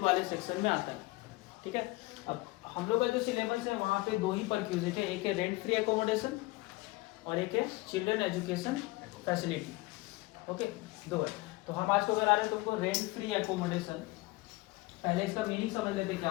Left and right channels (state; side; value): quieter; right; 21.8 dB